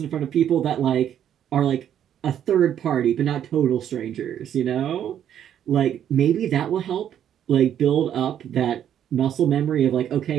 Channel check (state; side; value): quieter; left; 9.9 dB